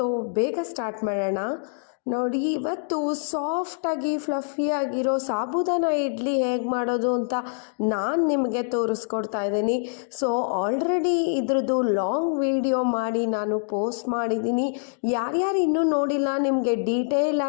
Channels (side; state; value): right; silent; digital silence